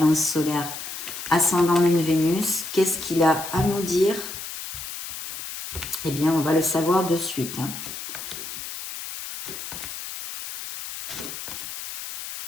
solaires ascendant Lune Vénus. Qu'est-ce qu'il a à nous dire? Eh bien, on va le savoir de suite. Hein.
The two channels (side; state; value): left; noise; hiss, 9 dB below the sound